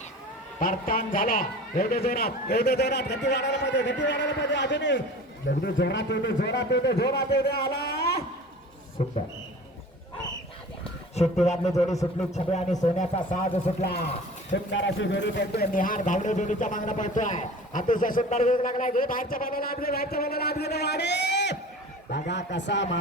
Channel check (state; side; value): normal; both; correlation 0.40